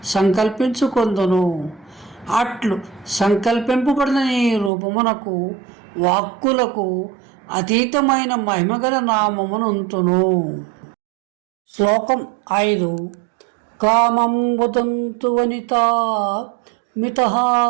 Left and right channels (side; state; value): left; drops out; at 4.7 s